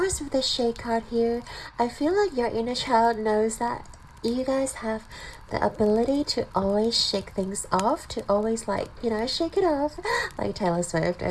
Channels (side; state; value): both; identical; correlation 1.00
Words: with the shade card here, I feel like your inner child knows that you guys have the ability to always shake things off, to always like, you know, shake it off. Like Taylor Swift,